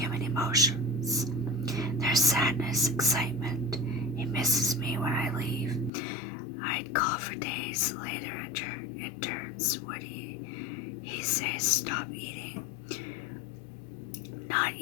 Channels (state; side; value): drops out; right; at 5.9 s